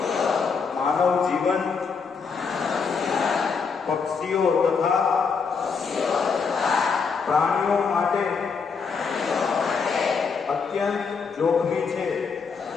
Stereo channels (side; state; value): right; quieter; 5.5 dB